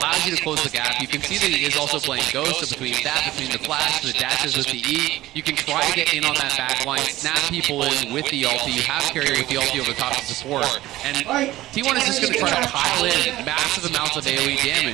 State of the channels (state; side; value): quieter; left; 16.3 dB